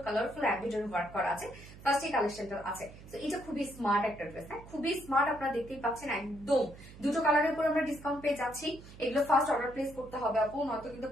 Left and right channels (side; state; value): right; noise; hum, 18 dB below the sound